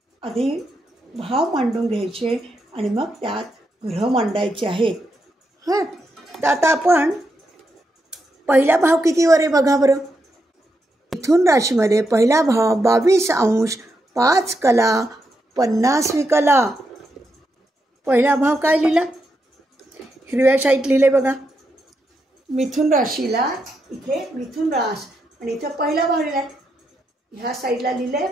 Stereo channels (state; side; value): normal; both; correlation 0.83